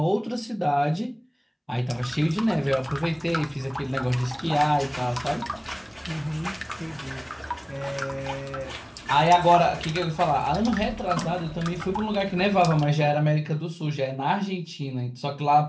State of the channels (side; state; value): both; identical; correlation 1.00